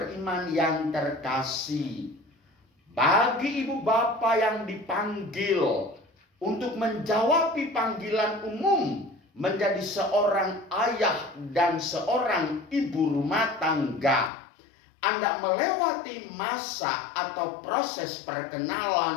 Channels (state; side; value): drops out; right; at 14.3 s